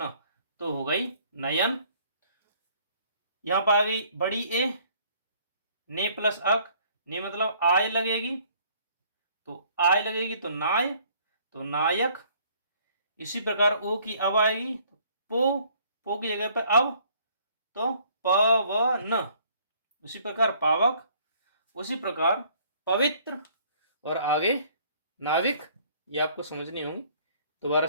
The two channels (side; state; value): both; inverted; correlation -0.60